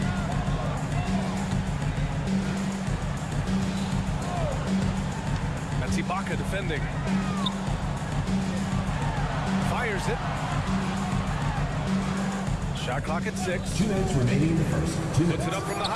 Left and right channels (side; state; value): both; identical; correlation 1.00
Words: That's Ibaka defending. Fires it. Shot clock at 6. 2 minutes remaining in the first. Puts it up from the